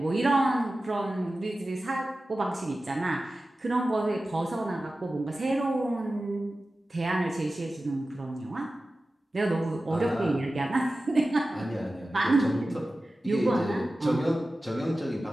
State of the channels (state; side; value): normal; both; correlation 0.95